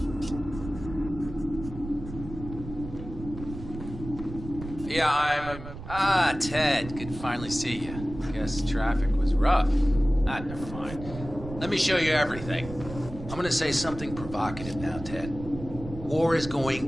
Yeah, Ted. Good to finally see you. Guess traffic was rough. Never mind. Let me show you everything. I'm gonna say something provocative now, Ted. War is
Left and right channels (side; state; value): right; noise; rumble, 11 dB below the sound